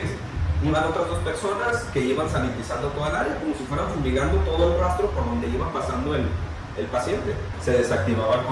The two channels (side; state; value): both; identical; correlation 1.00